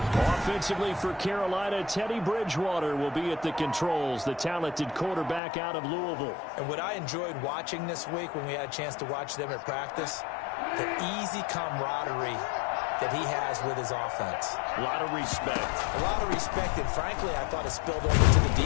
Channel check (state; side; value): drops out; right; at 5.4 s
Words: Offensively for Carolina, Teddy Bridgewater will be at the controls, the talented quarterback out of Louisville. And what I enjoyed watching this week when we had a chance to watch them at practice, the easy camaraderie that he has with his offense. A lot of respect. A lot of respect, and frankly, I thought it spilled over to the